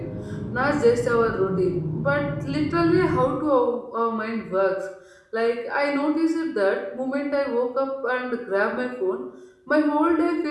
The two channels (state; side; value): identical; both; correlation 1.00